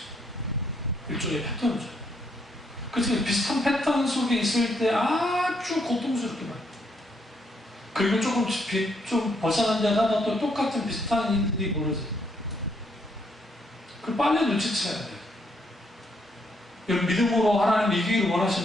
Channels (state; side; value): normal; both; correlation 0.74